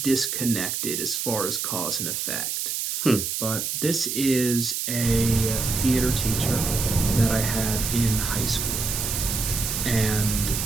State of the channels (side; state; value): right; noise; hiss, 2 dB below the sound